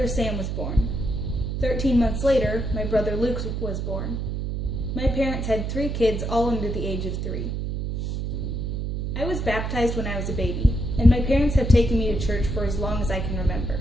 Sam was born. 13 months later, my brother Luke was born. My parents had 3 kids, all under the age of 3. I was baptized when I was a baby, and my parents have taken me to church for as long as I can remember.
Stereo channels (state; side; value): noise; right; hum, 2 dB below the sound